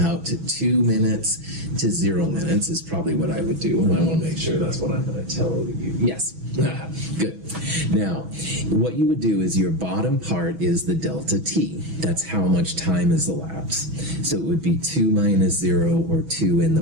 to 2 minutes to 0 minutes is probably what I would do, and I want to make sure that's what I'm going to tell you. Yes, good. Now, what you would do is your bottom part is the delta T. That's how much time has elapsed. So it would be 2 minus 0 or 2 in the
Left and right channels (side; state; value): left; late; 6.1 ms